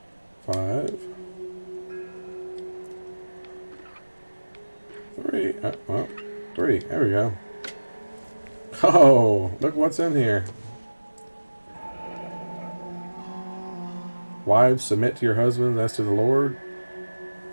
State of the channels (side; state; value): both; inverted; correlation -1.00